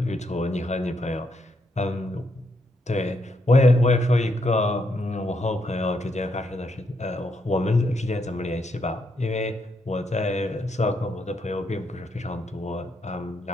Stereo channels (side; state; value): both; normal; correlation 0.78